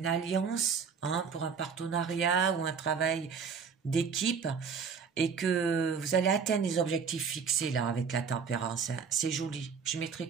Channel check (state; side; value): quieter; left; 6.1 dB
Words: alliance, hein, pour un partenariat ou un travail d'équipe, et que vous allez atteindre les objectifs fixés là avec la tempérance. Hein. C'est joli. Je mettrai